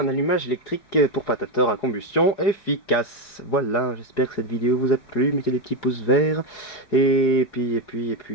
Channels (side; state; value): right; late; 4.9 ms